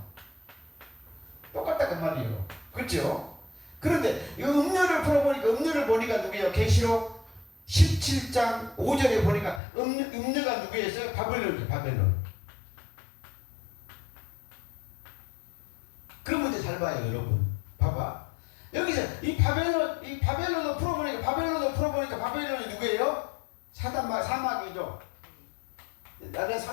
똑같다 그 말이에요. 그렇죠? 그런데 이 음료를 풀어보니까 음료를 보니까 누구예요? 계시록 17장 5절에 보니까 음료가 누구였어요? 바벨론이죠. 바벨론. 그런 문제 잘 봐요, 여러분. 봐봐. 여기서 이 바벨론을 풀어보니까 바벨론이 누구예요? 사마귀죠. 나는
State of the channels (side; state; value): right; drops out; at 9.6 s